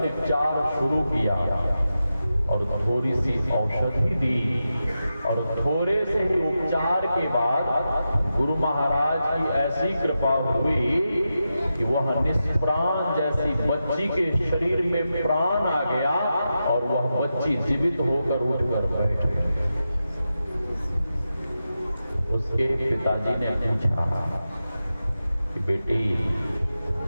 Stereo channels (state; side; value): inverted; both; correlation -0.90